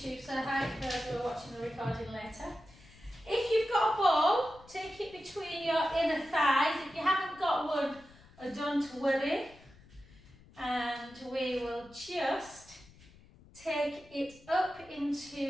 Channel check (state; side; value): noise; left; rumble, 24 dB below the sound